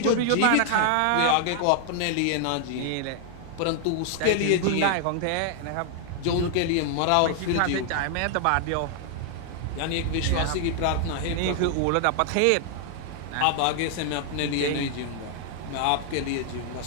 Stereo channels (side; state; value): both; different; correlation 0.00